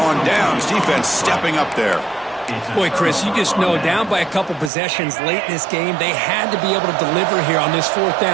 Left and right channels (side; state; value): left; drops out; at 4.7 s